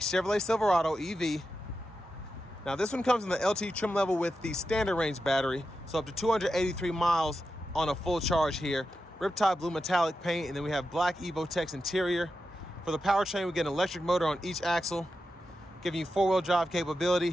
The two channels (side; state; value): both; normal; correlation 0.90